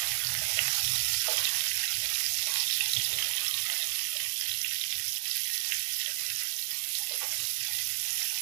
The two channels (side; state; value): left; silent; 57 dB below the other